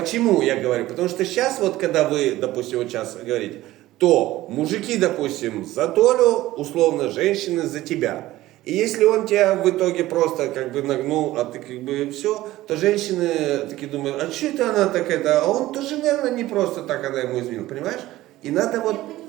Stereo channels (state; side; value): quieter; left; 16.3 dB